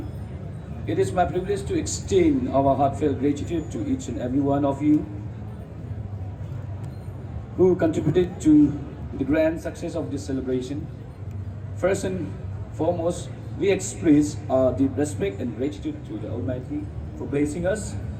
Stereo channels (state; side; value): identical; both; correlation 1.00